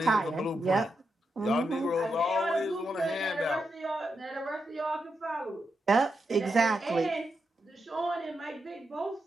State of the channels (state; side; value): normal; both; correlation 0.85